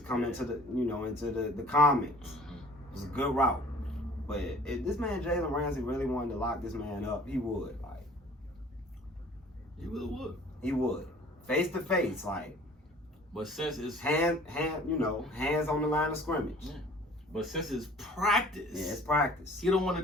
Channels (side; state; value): both; normal; correlation 0.50